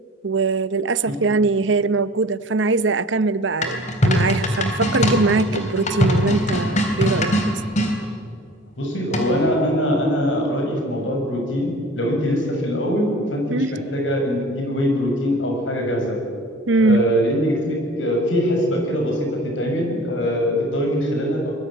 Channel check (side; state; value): both; normal; correlation 0.44